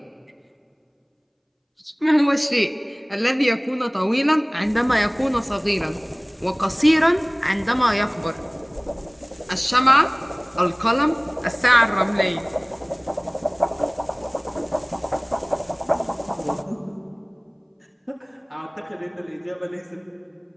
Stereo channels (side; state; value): both; identical; correlation 1.00